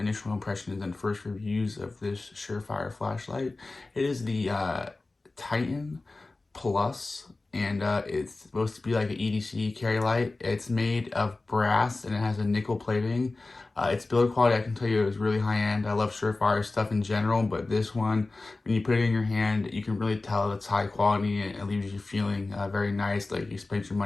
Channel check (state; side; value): quieter; right; 3.3 dB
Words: initial impressions and first reviews of this Surefire flashlight. It is the Titan Plus, and it's supposed to be like an EDC carry light. It's made of brass, and it has a nickel plating. Its build quality, I can tell you, is really high end. I love Surefire stuff in general, but this one, when you put it in your hand, you can really tell it's high quality, and it leaves you feeling very nice, like you spent your